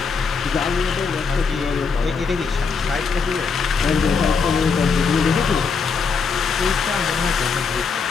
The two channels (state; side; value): quieter; right; 5.3 dB